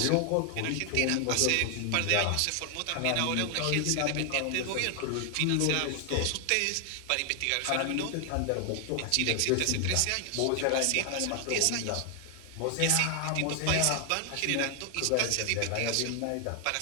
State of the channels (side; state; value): both; different; correlation 0.00